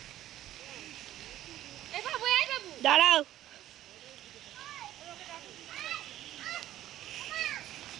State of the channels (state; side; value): quieter; left; 13.4 dB